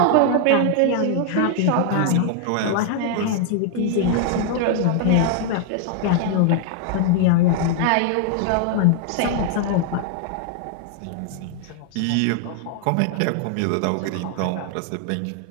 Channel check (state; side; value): different; both; correlation 0.00